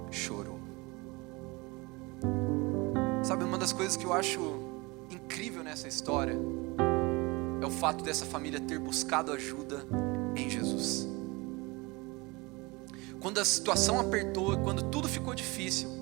chorou. Sabe, uma das coisas que eu acho incrível nessa história é o fato dessa família ter buscado ajuda em Jesus. Quando a situação apertou, quando tudo ficou difícil,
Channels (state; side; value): quieter; left; 25.0 dB